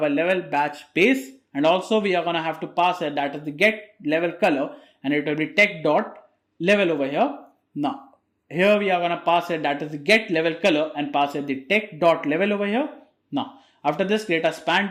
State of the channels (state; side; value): identical; both; correlation 1.00